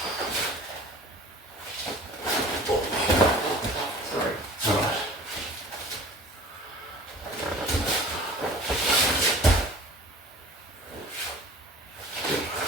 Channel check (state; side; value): normal; both; correlation 0.44